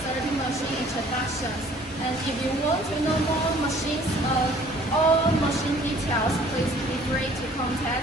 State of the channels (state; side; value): normal; both; correlation 0.55